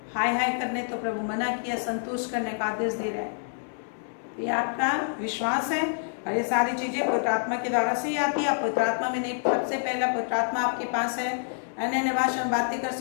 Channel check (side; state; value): right; silent; digital silence